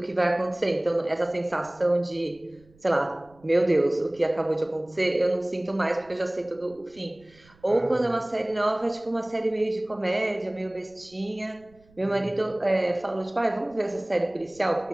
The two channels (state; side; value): noise; right; rumble, 29 dB below the sound